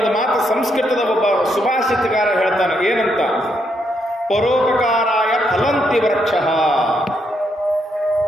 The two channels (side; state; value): both; normal; correlation 0.77